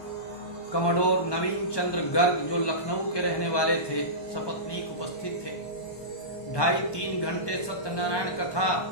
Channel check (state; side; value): late; right; 1.2 ms